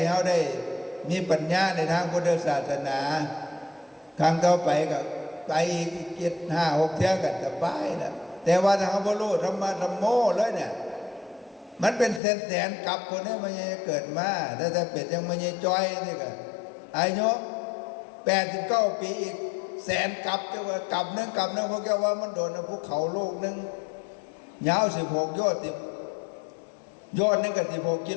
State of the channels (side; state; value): right; drops out; at 12.2 s